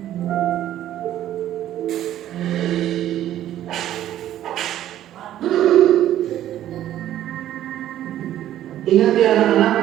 Ingat ya anak-anak,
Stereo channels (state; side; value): quieter; left; 12.3 dB